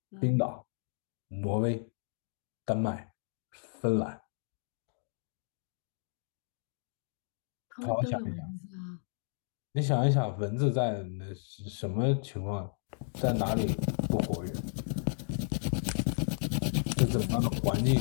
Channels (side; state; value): right; silent; digital silence